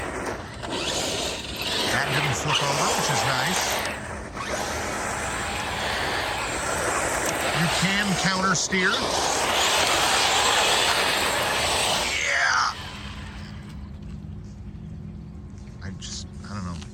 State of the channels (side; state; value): both; identical; correlation 1.00